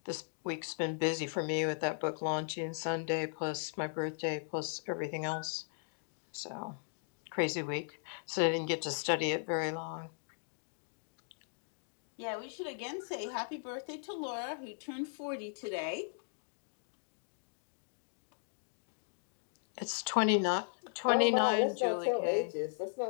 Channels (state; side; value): silent; right; digital silence